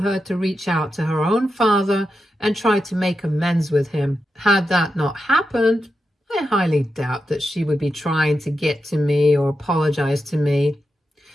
to reach out to her own father and try to make amends with him. Had that not happened, I highly doubt that she would be trying to get to me or apologize to me.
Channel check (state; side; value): normal; both; correlation 0.88